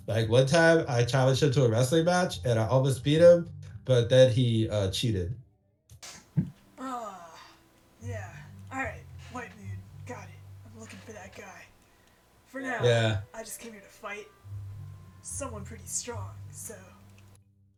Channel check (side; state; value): both; identical; correlation 1.00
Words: like one time I challenged him to a wrestling match and I almost beat him, but then he cheated. Ah, yeah. Alright, White Moon, got it. I'm looking for that guy. For now, Yeah. I just came here to fight someone pretty strong, so.